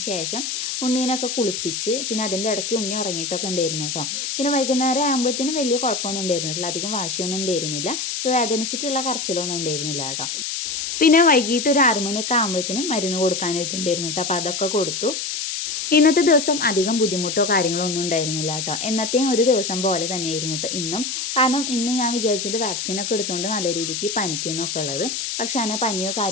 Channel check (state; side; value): noise; left; hiss, 3 dB below the sound